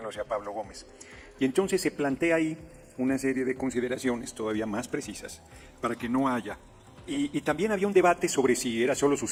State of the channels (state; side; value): identical; both; correlation 1.00